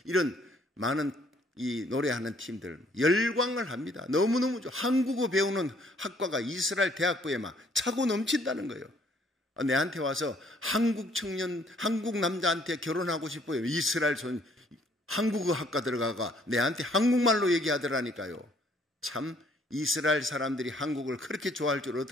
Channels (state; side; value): normal; both; correlation 0.63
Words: 이런 많은 이 노래하는 팀들 열광을 합니다. 너무너무 좋아. 한국어 배우는 학과가 이스라엘 대학부에 막 차고 넘친다는 거예요. 내한테 와서 한국 청년, 한국 남자한테 결혼하고 싶어요. 이스라엘 한국어 학과 들어가가 내한테 한국말로 얘기하더라니까요. 참 이스라엘 사람들이 한국을 그렇게 좋아할 줄